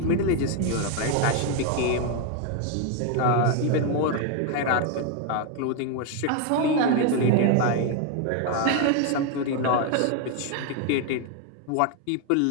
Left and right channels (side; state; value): both; different; correlation 0.01